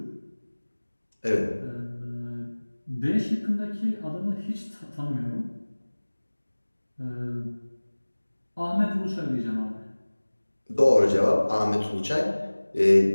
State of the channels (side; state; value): both; inverted; correlation -1.00